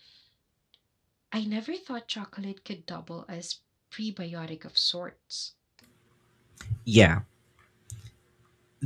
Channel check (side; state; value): both; identical; correlation 1.00